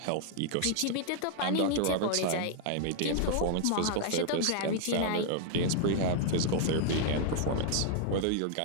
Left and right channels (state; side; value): different; both; correlation 0.00